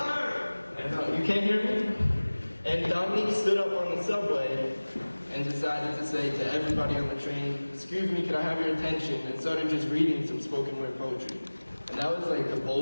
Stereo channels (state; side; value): inverted; both; correlation -1.00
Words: And, you can't hear me? And Dominique stood up on the subway and decided to say to everybody on the train, "Excuse me, can I have your attention?" and started just reading some spoken word poetry. And that was like the